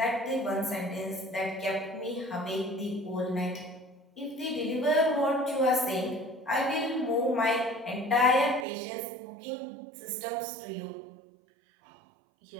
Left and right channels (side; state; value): left; drops out; at 8.7 s